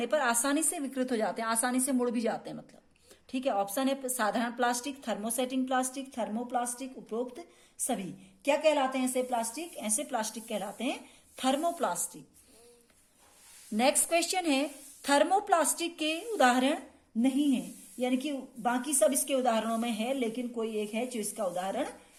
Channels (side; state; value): both; identical; correlation 1.00